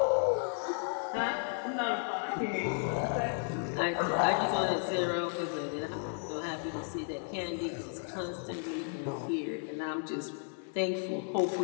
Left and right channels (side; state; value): right; silent; 55 dB below the other